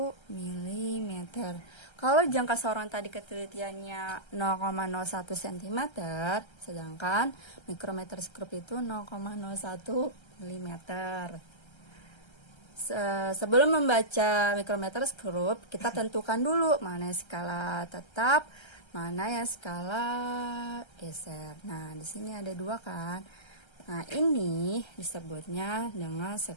mm. Kalau jangka sorong tadi ketelitiannya 0,01 cm, sedangkan mikrometer scope itu 0,01 mm. Sebelum membaca mikrometer scope, kita tentukan dulu mana skala tetap, mana yang skala geser. Nah, di sini ada dua kan. Nah, ini disebutnya dengan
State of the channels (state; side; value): late; right; 1.3 ms